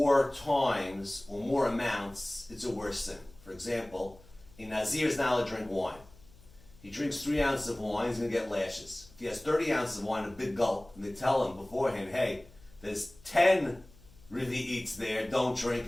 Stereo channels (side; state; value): left; noise; hum, 25 dB below the sound